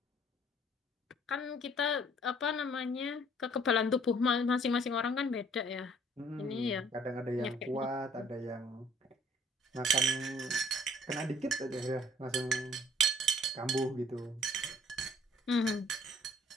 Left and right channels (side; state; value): both; normal; correlation 0.58